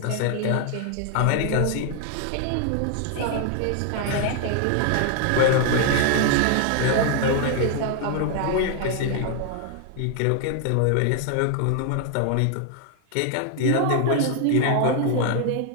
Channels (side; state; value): both; different; correlation 0.00